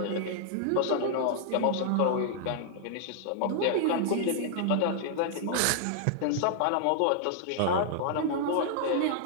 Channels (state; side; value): different; both; correlation -0.01